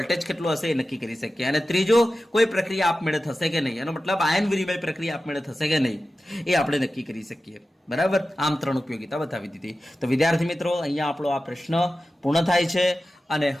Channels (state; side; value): normal; both; correlation 0.94